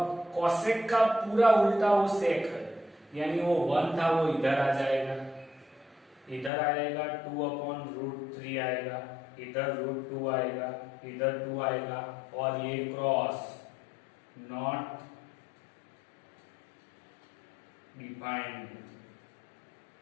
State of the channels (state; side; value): drops out; right; at 6.5 s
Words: कॉसेक का पूरा उल्टा वो सेक है, यानी वो 1 था वो इधर आ जाएगा, इधर आएगा 2/√3 आएगा, इधर √2 आएगा, इधर 2 आएगा, और ये क्रॉस नॉट डिफाइंड,